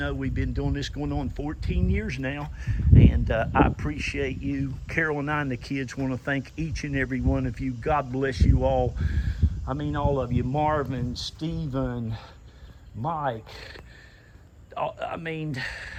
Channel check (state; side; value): identical; both; correlation 1.00